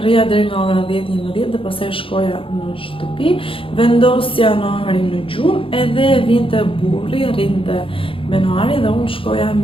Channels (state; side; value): late; right; 0.26 ms